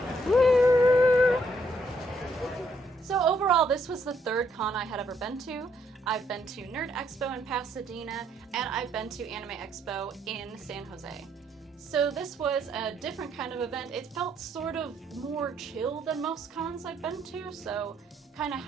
Woo! So overall, this was the third con I had ever been to. I've been to Nerd Expo in Pasadena, and I've been to Anime Expo in San Jose. So this was a different kind of event. It felt sort of more chill than most cons I've been to, so kind of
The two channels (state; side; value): normal; both; correlation 0.71